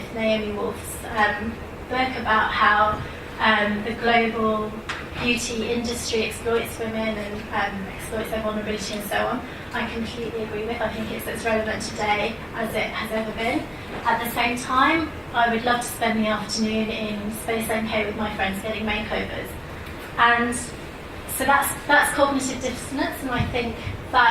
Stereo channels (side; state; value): both; identical; correlation 1.00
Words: Naomi Wolf's book about how the global beauty industry exploits women and exploits their vulnerability and so on, I completely agree with. I think it's as relevant today as it has ever been. At the same time, I would love to spend the afternoon in Space NK with my friends getting makeovers. And so that's cognitive dissonance, and I think